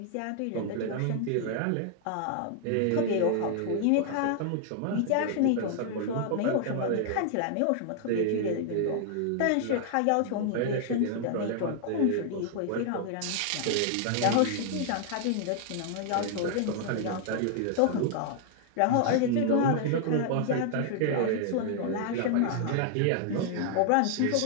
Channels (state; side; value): different; both; correlation 0.00